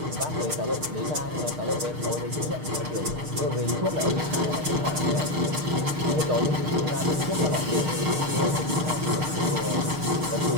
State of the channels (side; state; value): left; late; 6.5 ms